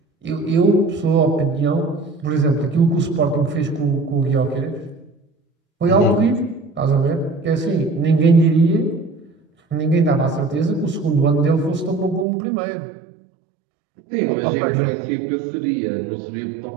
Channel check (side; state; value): left; drops out; at 12.2 s